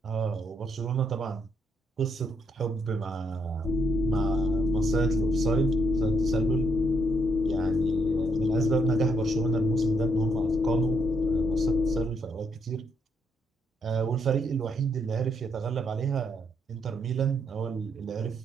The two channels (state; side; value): normal; both; correlation 0.75